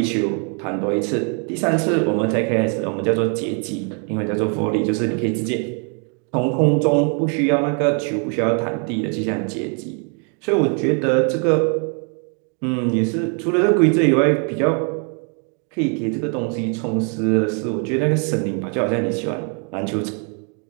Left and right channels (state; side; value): quieter; left; 39.6 dB